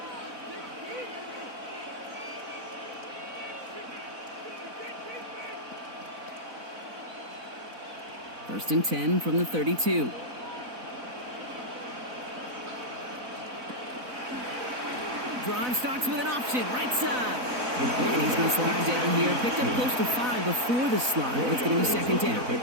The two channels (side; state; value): left; late; 4.0 ms